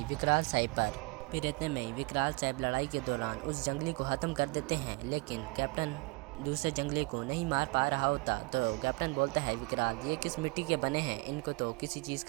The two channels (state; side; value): quieter; left; 28.0 dB